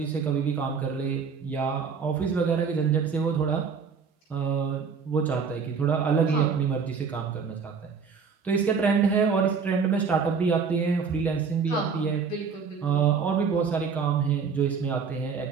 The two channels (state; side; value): quieter; left; 5.8 dB